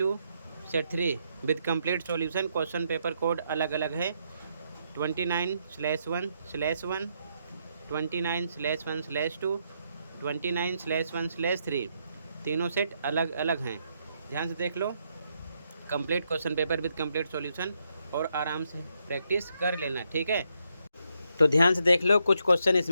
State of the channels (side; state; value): both; inverted; correlation -0.78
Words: set 3 with complete solution. Question paper code अलग अलग है 29/1/1, 29/1/2, 29/1/3। तीनों सेट अलग अलग हैं। ध्यान से देख लो, complete question paper with complete solution और आराम से प्रैक्टिस कर लेना, ठीक है। तो ध्यान से देख लो, कुछ क्वेश्चन